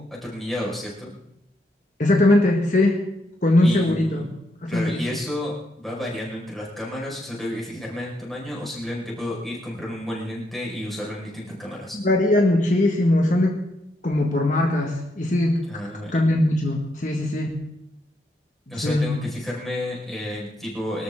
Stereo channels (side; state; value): both; normal; correlation 0.78